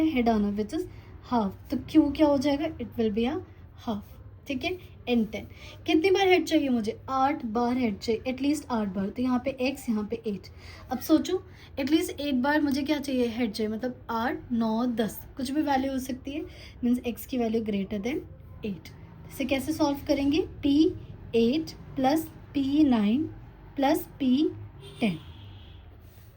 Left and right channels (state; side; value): identical; both; correlation 1.00